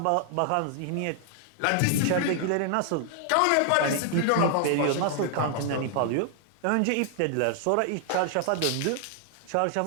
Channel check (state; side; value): different; both; correlation 0.00